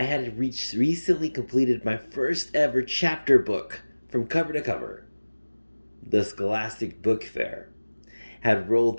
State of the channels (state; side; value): inverted; both; correlation -1.00